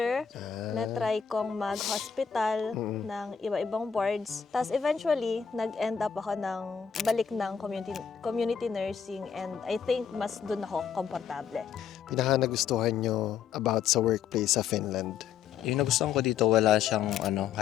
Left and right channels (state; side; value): quieter; right; 7.5 dB